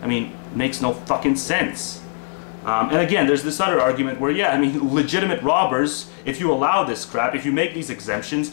I mean, it makes no fucking sense. And again, there's this other argument where, yeah, I mean, legitimate robbers, if you allow this crap, if you make these exemptions,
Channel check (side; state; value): right; silent; 65 dB below the other